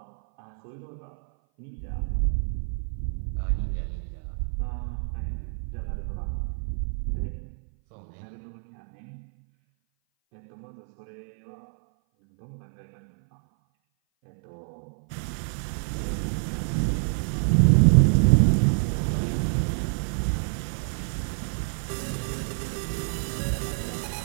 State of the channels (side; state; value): left; silent; 58 dB below the other